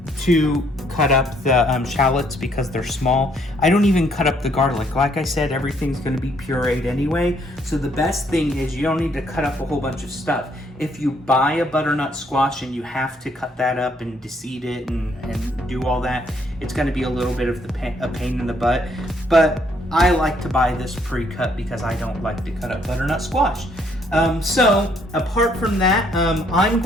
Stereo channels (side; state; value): both; normal; correlation 0.68